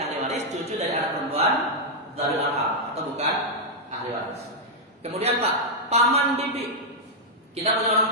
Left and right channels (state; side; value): normal; both; correlation -0.04